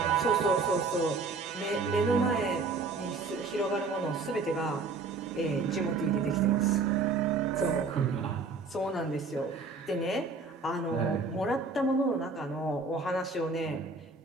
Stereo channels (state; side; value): quieter; left; 4.1 dB